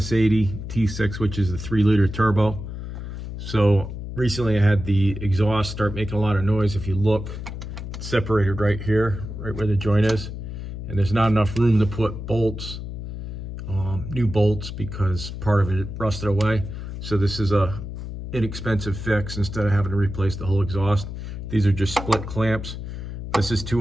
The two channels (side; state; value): left; noise; hum, 8 dB below the sound